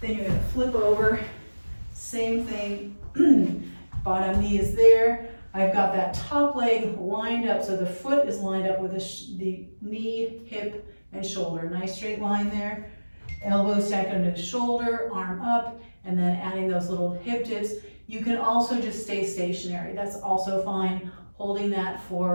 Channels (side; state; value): both; inverted; correlation -1.00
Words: Then you're going to flip over. Same thing. Bottom knee is there. I've got that top leg lined up, so the foot is lined up with the knee, hip, and shoulder. Nice straight line there. Elbow stacked under the shoulder, arm up, and then adding those little hip dips. You can also just stay stationary. That's also fine. Holding that